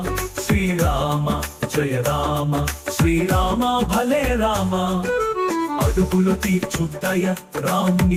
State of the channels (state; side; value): identical; both; correlation 1.00